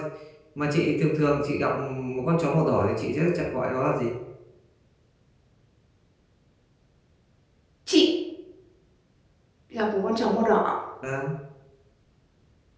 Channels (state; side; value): identical; both; correlation 1.00